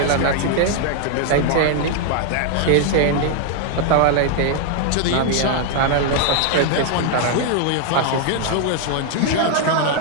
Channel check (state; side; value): different; both; correlation 0.00